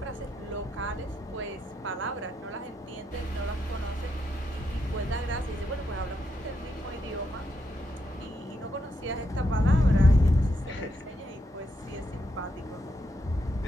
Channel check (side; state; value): both; normal; correlation 0.81